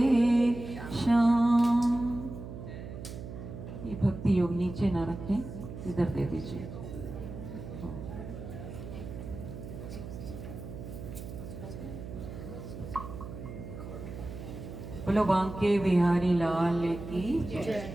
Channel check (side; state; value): right; noise; hum, 10 dB below the sound